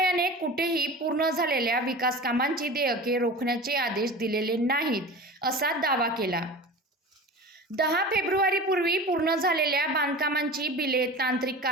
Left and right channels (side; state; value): both; normal; correlation 0.34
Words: कुठेही पूर्ण झालेल्या विकास कामांची देयके रोखण्याचे आदेश दिलेले नाहीत असा दावा केला. 10 फेब्रुवारीपूर्वी पूर्ण झालेल्या बांधकामांची बिले तांत्रिक